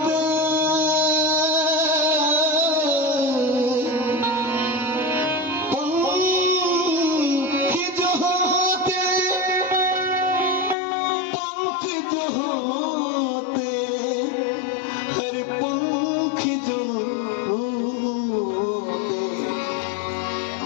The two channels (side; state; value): right; drops out; at 10.8 s